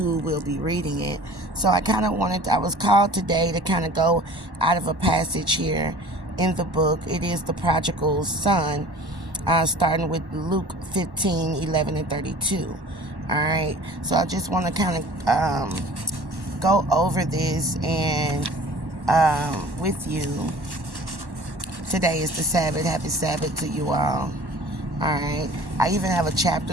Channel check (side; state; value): left; late; 1.1 ms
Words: will be reading it. So I was called today to kind of go out of a passage here in the book. It is the Prodigal Son, starting with Luke 15:11 and 32. All right, so I just want to kind of go over this and with you. Today is the Sabbath. Happy Sabbath to you all. All right, I even have a